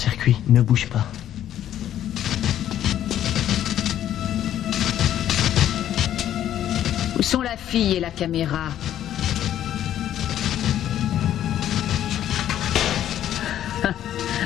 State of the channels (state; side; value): quieter; right; 11.4 dB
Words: ne bouge pas. Où sont la fille et la caméra?